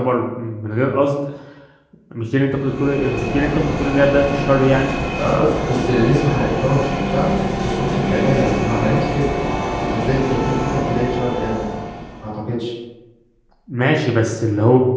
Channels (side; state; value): both; identical; correlation 1.00